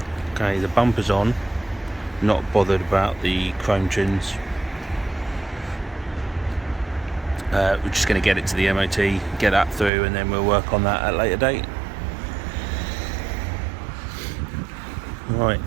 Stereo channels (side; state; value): left; drops out; at 9.9 s